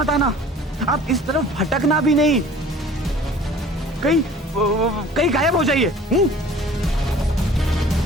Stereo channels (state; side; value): normal; both; correlation 0.48